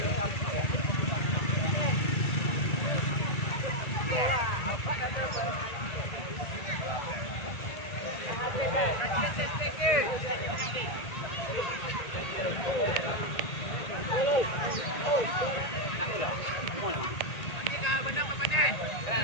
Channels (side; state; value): right; late; 1.8 ms